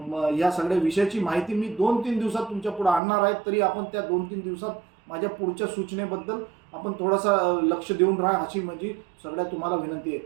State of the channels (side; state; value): left; drops out; at 3.0 s